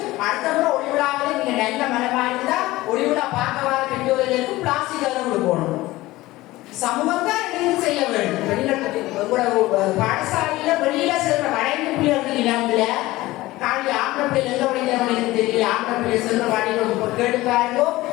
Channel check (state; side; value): quieter; right; 18.3 dB